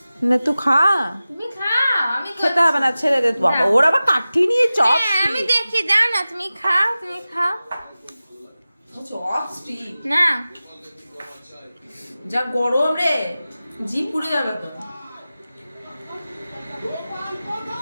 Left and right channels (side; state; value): both; inverted; correlation -0.96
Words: না তুই খা। তুমি খাও, আমি খেতে হবে না, ছেড়ে দে। বাবা ওর আবার কাঠি নিয়ে চপ। আমি দেখি, যাও না, তুমি খাও, তুমি খাও চপ স্টিক না। যা গরম রে, জিভ পুড়ে যাবে তো।